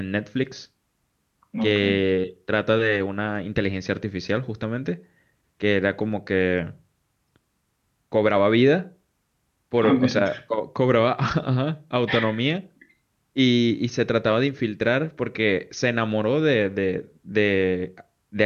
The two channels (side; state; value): both; identical; correlation 1.00